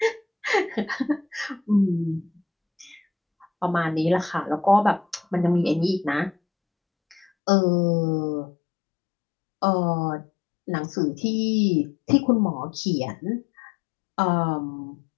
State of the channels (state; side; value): drops out; right; at 7.2 s